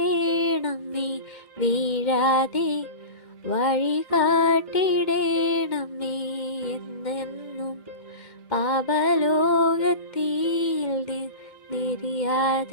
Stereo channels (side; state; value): right; late; 2.1 ms